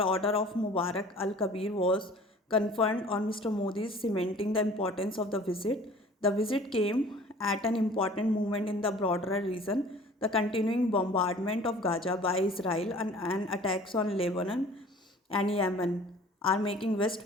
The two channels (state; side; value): normal; both; correlation 0.48